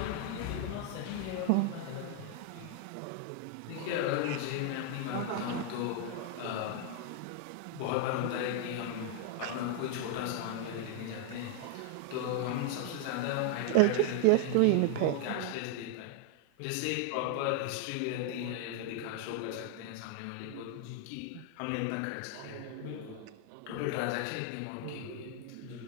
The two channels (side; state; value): both; different; correlation 0.00